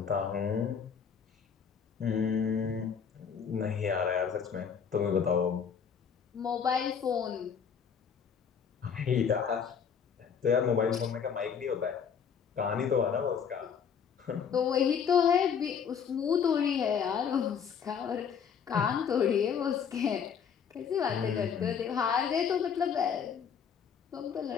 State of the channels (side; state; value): right; quieter; 7.1 dB